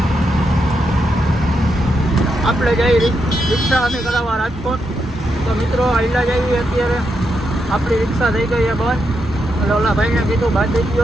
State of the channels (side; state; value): both; normal; correlation 0.82